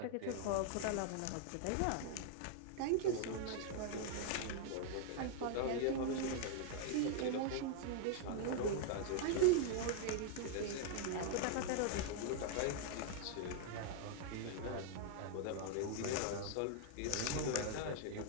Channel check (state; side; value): different; both; correlation -0.01